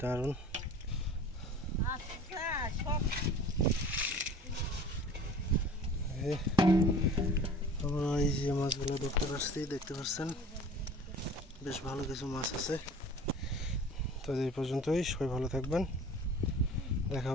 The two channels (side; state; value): both; normal; correlation 0.44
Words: দারুণ। আমরা এই যে মাছগুলো দেখতে পাচ্ছেন বেশ ভালো কিছু মাছ আছে। তো এই পর্যন্তই, সবাই ভালো থাকবেন, দেখা